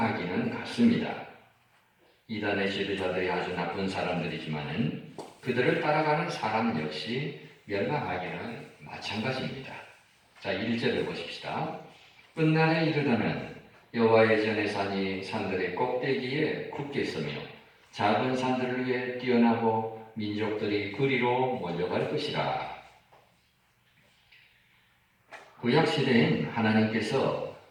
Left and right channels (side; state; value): both; identical; correlation 1.00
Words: 같습니다. 이단의 지도자들이 아주 나쁜 사람들이지만은 그들을 따라가는 사람 역시 멸망하기는 마찬가지입니다. 자, 1절을 보십시다. 끝날에 이르다는 여호와의 전의 산이 산들의 꼭대기에 굳게 서며 작은 산들을 위해 뛰어나고 민족들이 그리로 몰려갈 것이라. 구약 시대엔 하나님께서